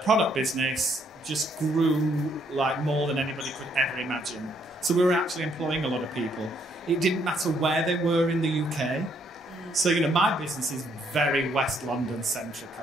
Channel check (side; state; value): both; normal; correlation 0.70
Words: product business just grew like more than anybody could ever imagine. So we were actually employing a lot of people. It didn't matter where they were in the UK. So, my business is very West London centric.